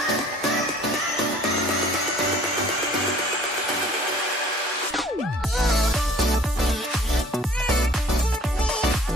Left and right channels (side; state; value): both; normal; correlation 0.53